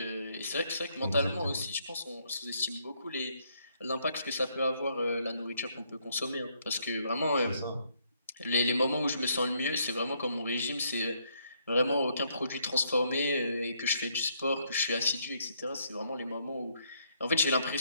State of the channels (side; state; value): both; inverted; correlation -0.71